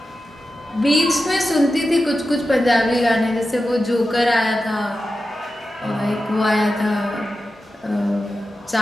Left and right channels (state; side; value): normal; both; correlation 0.92